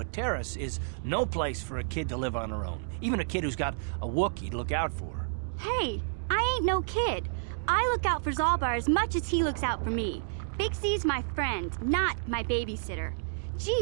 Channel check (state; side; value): silent; left; digital silence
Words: Taris is no place for a kid to live on her own. Even a kid who's got a Wookiee to look out for. Hey, I ain't no kid. I look out for Zalbar as much as he looks out for me. Big Z's my friend, not my babysitter.